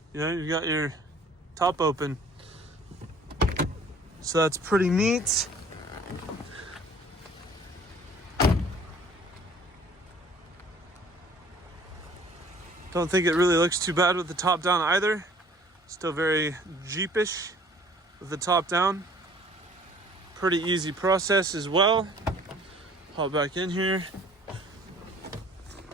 you've got your top open. So that's pretty neat. Don't think it really looks too bad with the top down either. Still very Jeepish with the top down. Pretty easy process as well. Hop back in here.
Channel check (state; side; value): normal; both; correlation 0.53